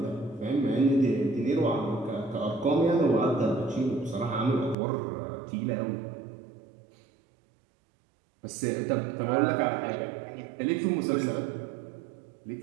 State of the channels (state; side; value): drops out; left; at 4.8 s